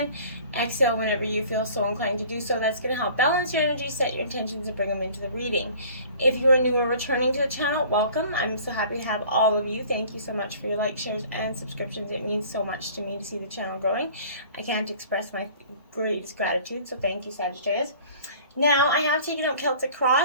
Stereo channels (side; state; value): both; inverted; correlation -0.48